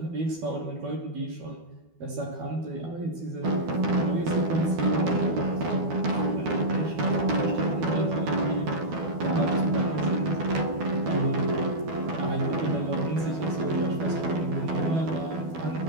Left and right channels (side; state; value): left; late; 12 ms